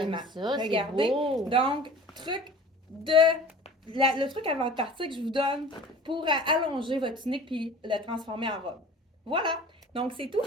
j'aime ça, c'est Regardez. beau. Donc, truc de le truc avant de partir que je vous donne pour allonger votre tunique puis le transformer en robe. Voilà. Donc, c'est tout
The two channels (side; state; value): both; normal; correlation 0.43